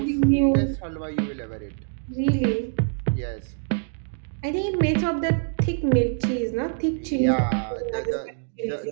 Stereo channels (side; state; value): left; silent; digital silence